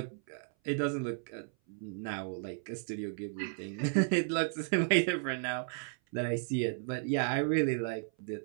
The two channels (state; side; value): silent; left; 55 dB below the other